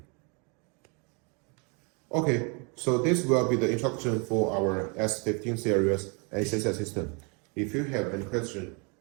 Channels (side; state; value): left; quieter; 33.8 dB